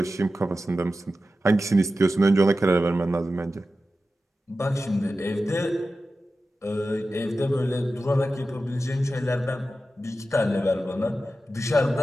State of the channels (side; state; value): both; normal; correlation 0.93